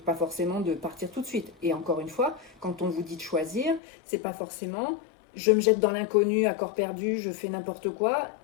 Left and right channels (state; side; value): drops out; right; at 3.8 s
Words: Pas forcément de partir tout de suite. Et encore une fois, quand on vous dit de choisir, c'est pas forcément je me jette dans l'inconnu à corps perdu, je fais n'importe quoi.